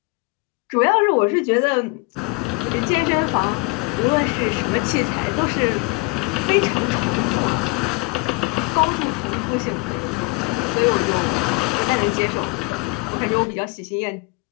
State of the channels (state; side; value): quieter; right; 26.9 dB